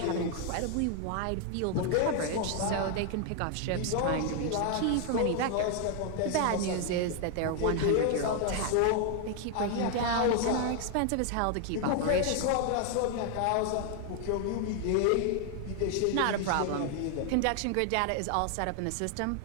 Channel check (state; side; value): different; both; correlation 0.00